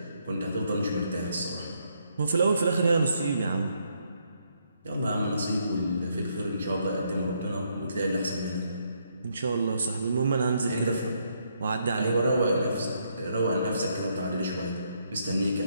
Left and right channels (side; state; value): both; inverted; correlation -0.74